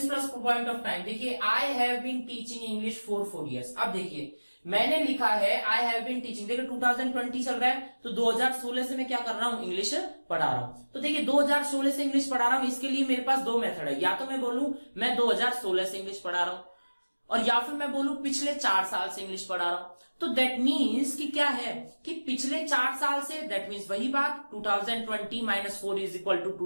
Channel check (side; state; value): both; inverted; correlation -1.00